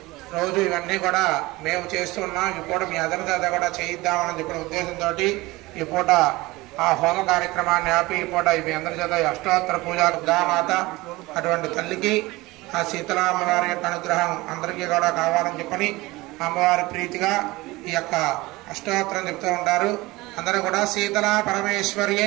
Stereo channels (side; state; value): left; quieter; 20.8 dB